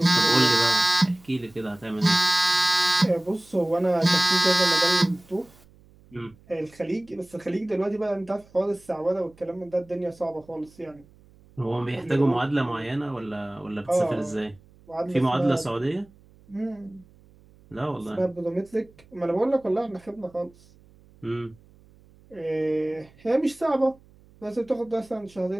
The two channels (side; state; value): right; noise; hum, 27 dB below the sound